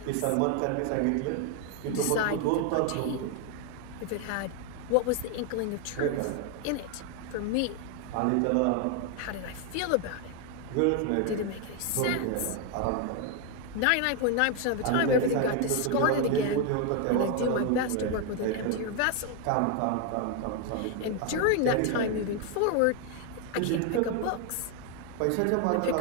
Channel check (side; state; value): both; different; correlation 0.01